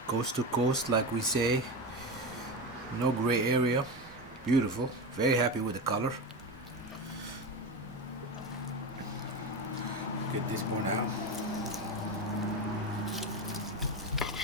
Coast to coast, like we say. No gray area. Beautiful. Very happy with the color. Get this one out.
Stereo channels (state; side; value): normal; both; correlation 0.20